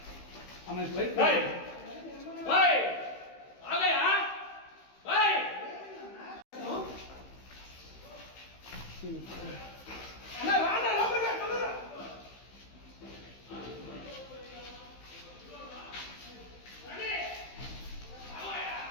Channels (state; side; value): late; right; 15 ms